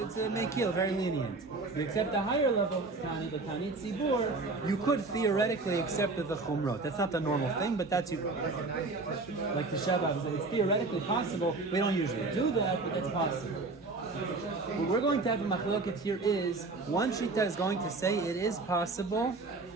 a mekil, very lenient. If you accept a higher level Taanit, the Taanit Tzibur, you could theoretically accept the chumrot. That's not the normal thing, but that's like the Shabbat, it's theoretically possible. We don't usually do that, but that's possible. What we're going to have a machloket here is, one shita is going to say it is possible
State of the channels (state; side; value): quieter; left; 3.5 dB